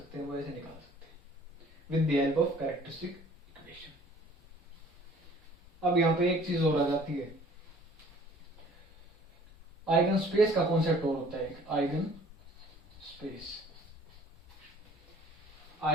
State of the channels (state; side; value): normal; both; correlation 0.53